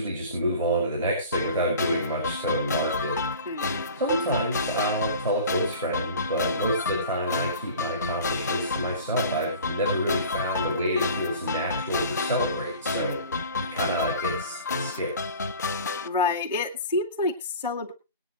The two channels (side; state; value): both; inverted; correlation -0.41